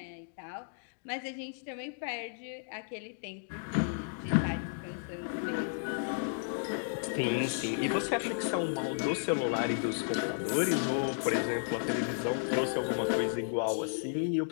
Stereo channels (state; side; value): silent; right; digital silence